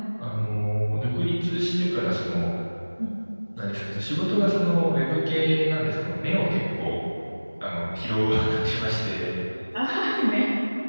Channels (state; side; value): inverted; both; correlation -1.00